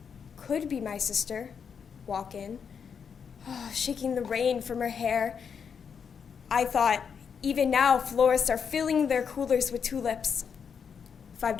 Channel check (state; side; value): quieter; right; 6.8 dB